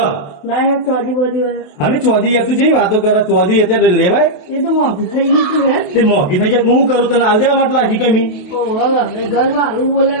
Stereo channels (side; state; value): right; late; 28 ms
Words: ના ચોરી બધી અને ચોધી તું જેવી વાતો કરે ચોધી અત્યારે લેવાય એ તો મોંઘી થઈ ગઈ તું હે તે મોંઘી થઈ જાય હું કરું તને હાલ દેવા માટે લાગી કમી ઘર મારું બોલે